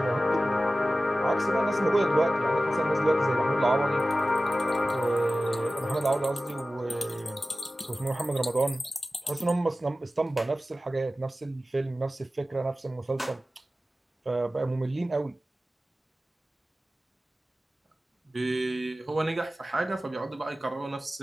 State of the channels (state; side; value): normal; both; correlation 0.95